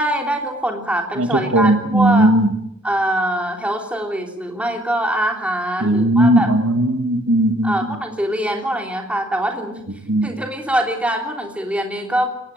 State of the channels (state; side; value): normal; both; correlation 0.62